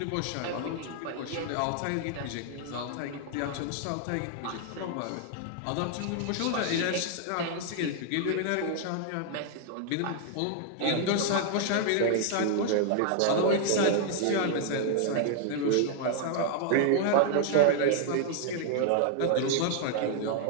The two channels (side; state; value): both; different; correlation 0.00